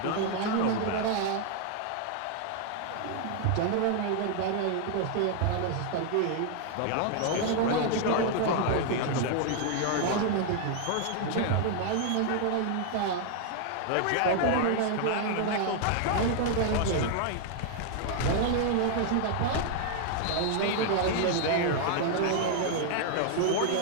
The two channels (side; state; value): both; different; correlation 0.00